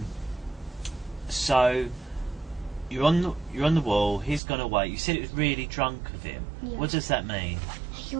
So you're on the wall. He's gone away. You said it was really drunk of him. Yeah. What does that mean? He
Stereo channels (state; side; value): drops out; left; at 4.4 s